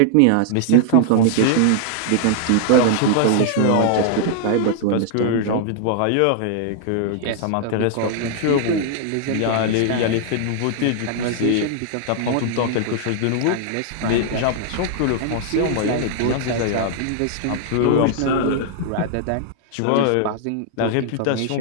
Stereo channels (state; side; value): different; both; correlation 0.00